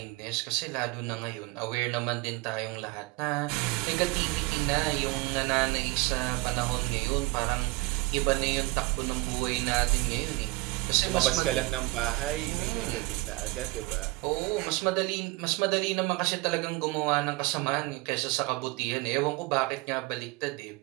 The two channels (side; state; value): left; quieter; 22.8 dB